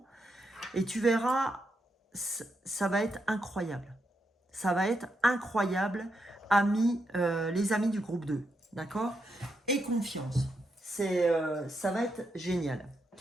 Et tu verras, ça va être incroyable. Ça va être incroyable, amis, les amis du groupe 2. D'accord? Et confiance. Ça va être génial.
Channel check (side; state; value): both; normal; correlation 0.82